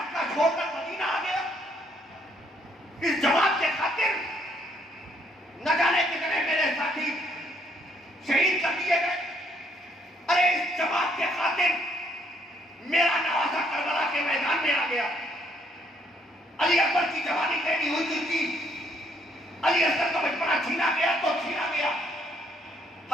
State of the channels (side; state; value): both; normal; correlation 0.69